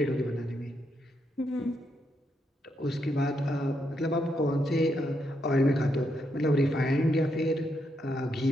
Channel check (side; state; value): both; normal; correlation 0.79